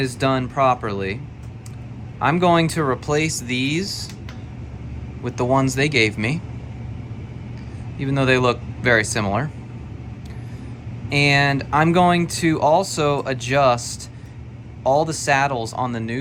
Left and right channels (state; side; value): identical; both; correlation 1.00